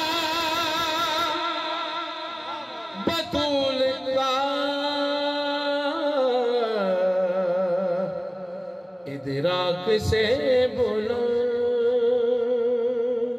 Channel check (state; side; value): identical; both; correlation 1.00